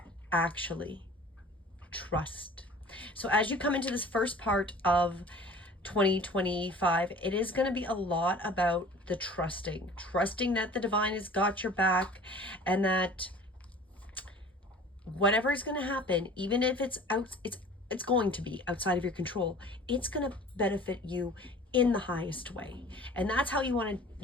actually. Trust. So as you come into this first part of 2025, it is going to be a lot about the trusting that the divine has got your back, and that whatever is going to happen, even if it's going to be outside of your control, it's going to benefit you in the highest way. And that's how you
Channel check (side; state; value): both; normal; correlation 0.45